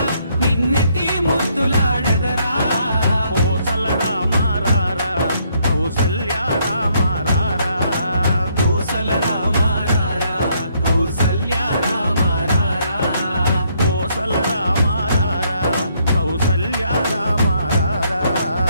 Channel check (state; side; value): inverted; both; correlation -0.70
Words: నిన్నెత్తి ముద్దులాడెదరా కోసల రామ రారా కౌసల్య రామ రారా కోసల రామ రారా కౌసల్య రామ రారా కోసల రామ రారా కౌసల్య రామ రారా